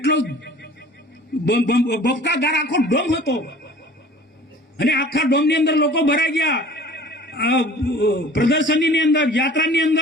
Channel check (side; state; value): both; normal; correlation 0.47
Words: બફકાદાર આખો ડોમ હતો. અને આખા ડોમની અંદર લોકો ભરાઈ ગયા. પ્રદર્શનની અંદર, યાત્રાની